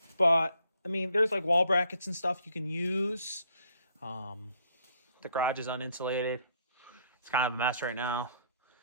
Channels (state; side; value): inverted; both; correlation -0.67